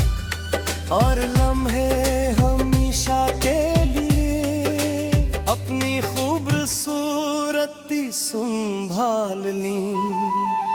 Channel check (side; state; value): both; identical; correlation 1.00